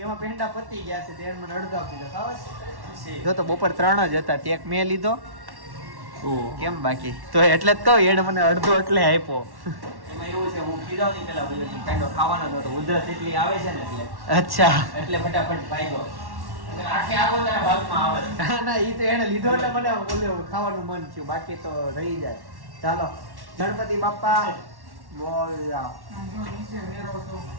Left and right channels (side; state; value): left; late; 1.1 ms